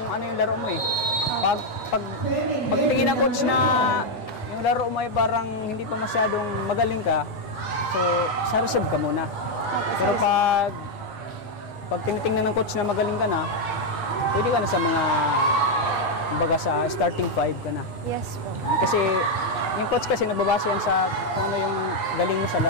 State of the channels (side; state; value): right; late; 8.2 ms